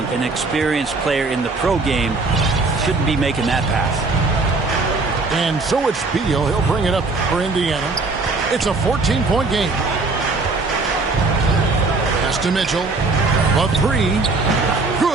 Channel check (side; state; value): left; quieter; 3.6 dB